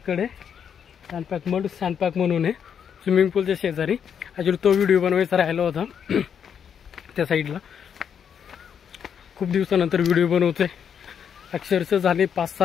सँडपॅक म्हणून आहे स्विमिंग पूलच्या शेजारी. ॲक्च्युली तो व्हिडिओ बनवायचा राहिला होता त्या साईडला. खूप दिवसानंतर व्हिडिओ बनवतोय. अक्षरशः झाले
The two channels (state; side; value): quieter; right; 7.8 dB